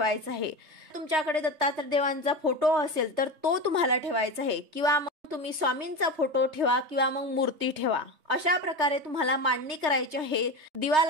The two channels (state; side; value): late; left; 3.3 ms